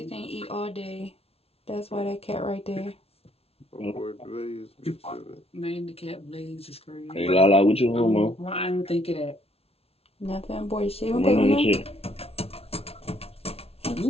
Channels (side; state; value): right; late; 0.29 ms